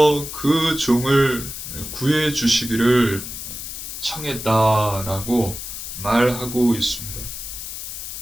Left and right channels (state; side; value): noise; left; hiss, 8 dB below the sound